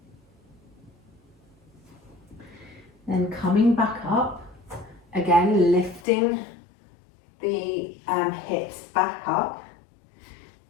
Then coming back up, again lifting the hips back up,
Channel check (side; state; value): right; drops out; at 6.1 s